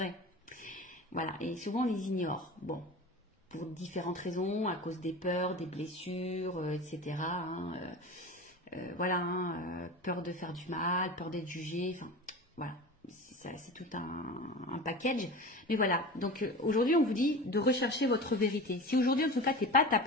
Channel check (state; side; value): normal; both; correlation 0.32